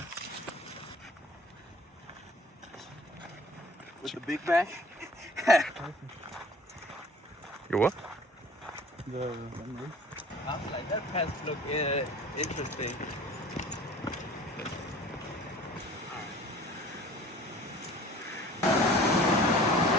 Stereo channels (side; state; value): both; normal; correlation 0.47